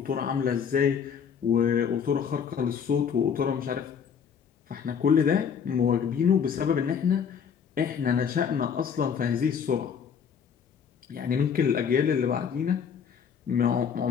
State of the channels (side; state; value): right; quieter; 7.2 dB